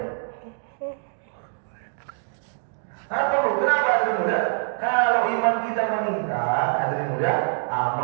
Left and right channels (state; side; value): silent; left; digital silence